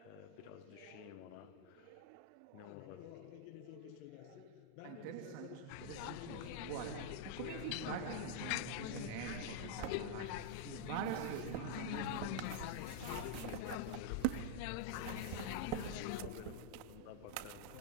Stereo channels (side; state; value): both; different; correlation -0.01